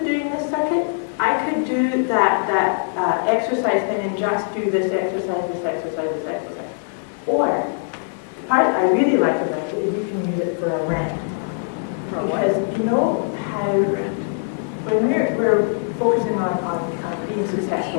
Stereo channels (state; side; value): silent; right; 58 dB below the other